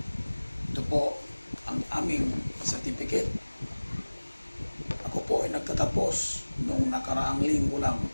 Ito po ang aming certificate. Ako po ay nagtatapos noong nakaraang linggo lang,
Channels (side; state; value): both; inverted; correlation -1.00